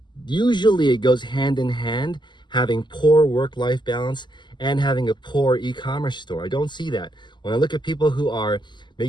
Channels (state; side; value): late; right; 0.22 ms